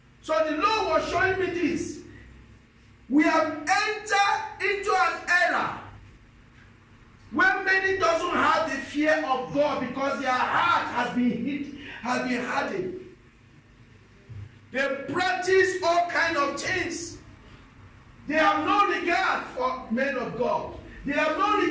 So the Lord was showing me this. We have entered into an era where many doesn't have the fear of God because their heart has been hardened. They practice all kind of things. They have no regard for men of God. They have no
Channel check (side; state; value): both; identical; correlation 1.00